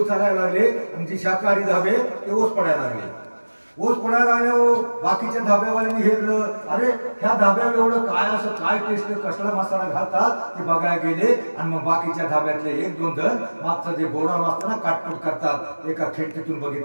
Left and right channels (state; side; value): inverted; both; correlation -1.00